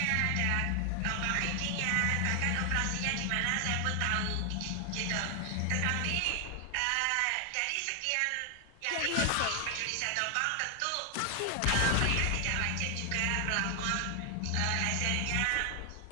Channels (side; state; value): both; different; correlation 0.00